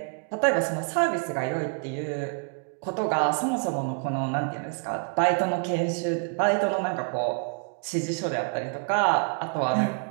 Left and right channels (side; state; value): left; quieter; 38.9 dB